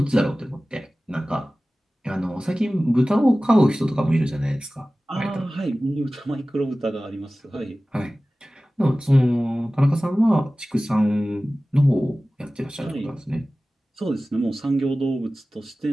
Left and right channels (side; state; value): both; normal; correlation 0.97